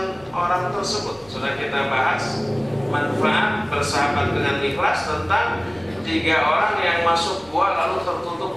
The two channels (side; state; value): right; noise; rumble, 27 dB below the sound